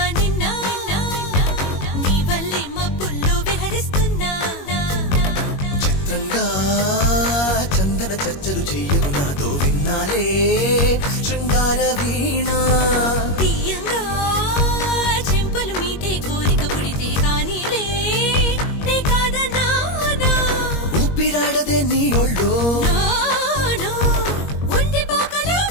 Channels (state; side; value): late; right; 21 ms